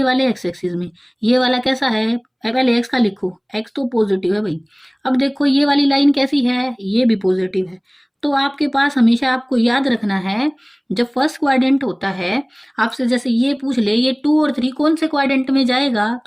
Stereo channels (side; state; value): both; identical; correlation 1.00